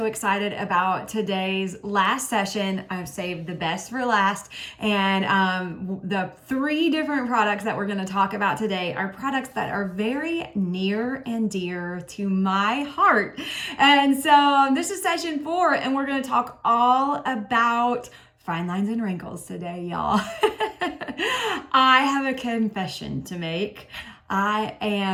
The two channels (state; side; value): identical; both; correlation 1.00